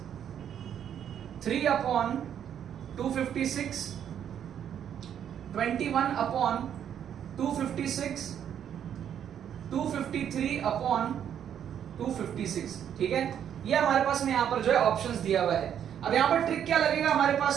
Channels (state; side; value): quieter; left; 9.3 dB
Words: 3/256, 21/256, 253/256। ठीक है, ये हमारे पास में यहाँ पर जो है ऑप्शंस दिया हुआ है। अब यहाँ पर ट्रिक क्या लगेगा हमारे